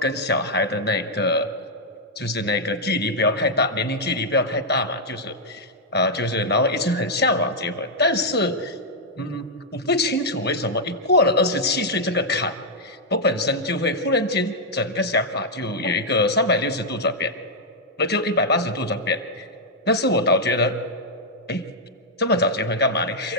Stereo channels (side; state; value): both; normal; correlation -0.04